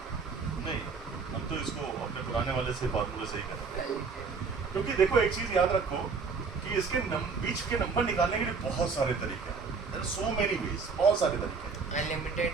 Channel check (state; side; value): quieter; left; 5.0 dB